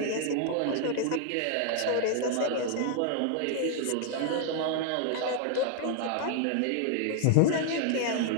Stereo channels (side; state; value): both; different; correlation 0.00